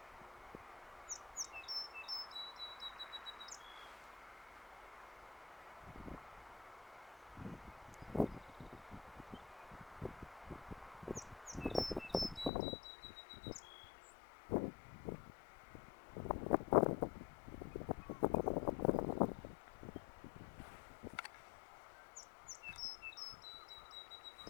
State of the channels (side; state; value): right; drops out; at 12.5 s